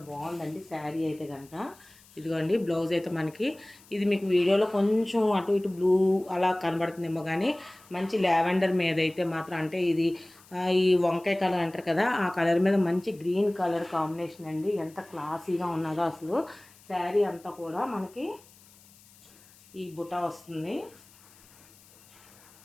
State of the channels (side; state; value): left; noise; hiss, 26 dB below the sound